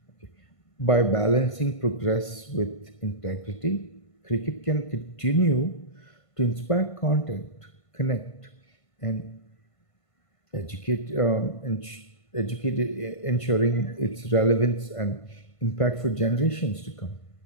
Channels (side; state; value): right; late; 1.5 ms